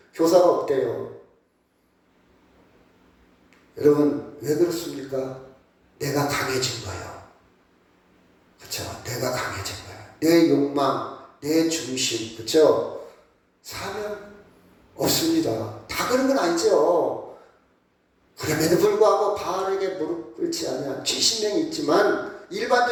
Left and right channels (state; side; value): identical; both; correlation 1.00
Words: 교사가 없대요. 여러분 왜 그렇습니까? 내가 강해진 거예요. 그렇죠? 내가 강해진 거예요. 내 욕망, 내 중심, 그렇죠? 사명 없습니다. 다 그런 건 아니죠. 그럼에도 불구하고 바알에게 무릎 꿇지 않은 70명이 있지만